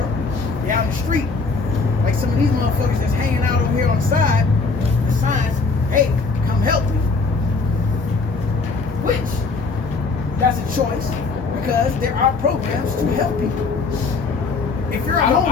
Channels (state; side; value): quieter; right; 4.1 dB